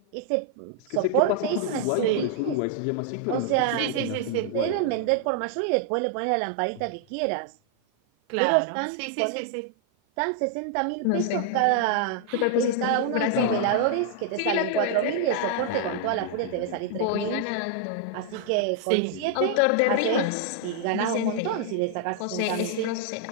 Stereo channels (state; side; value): different; both; correlation 0.00